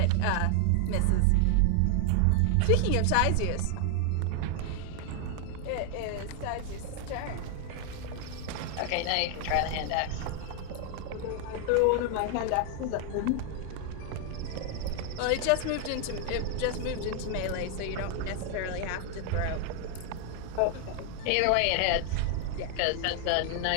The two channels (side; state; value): both; different; correlation 0.00